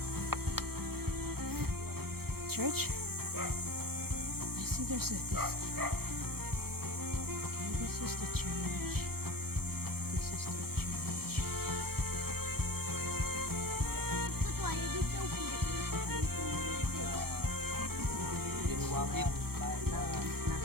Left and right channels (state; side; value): late; left; 0.95 ms